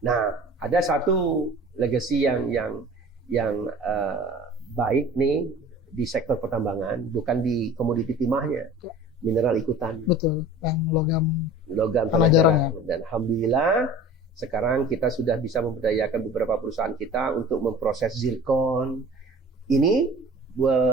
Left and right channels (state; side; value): normal; both; correlation 0.42